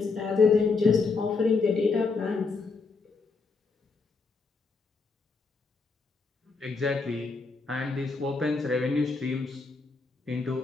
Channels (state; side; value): quieter; right; 4.4 dB